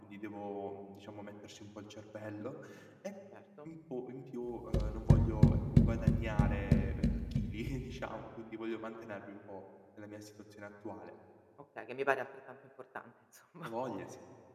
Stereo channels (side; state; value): both; identical; correlation 1.00